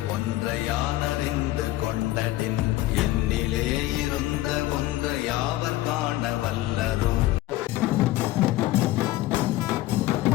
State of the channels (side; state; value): right; quieter; 16.4 dB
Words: ஒன்றை யான் அறிந்து கொண்டடின், என்னிலே இருந்த ஒன்றை யாவர் காண வல்லரோ.